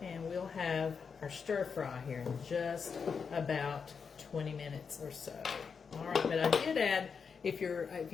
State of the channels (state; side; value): quieter; right; 5.9 dB